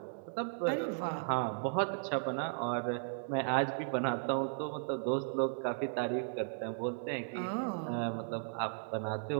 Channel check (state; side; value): silent; left; digital silence